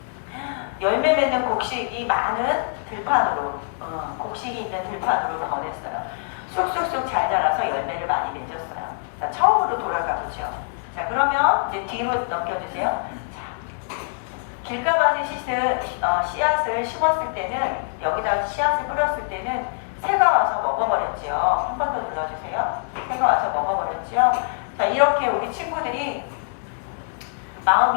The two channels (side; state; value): right; silent; digital silence